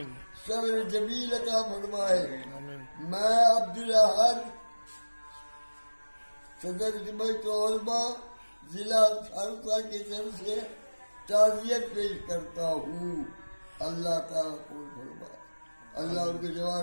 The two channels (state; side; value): inverted; both; correlation -1.00